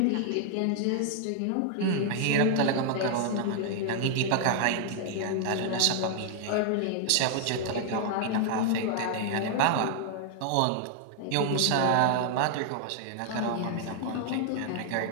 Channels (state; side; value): different; both; correlation 0.00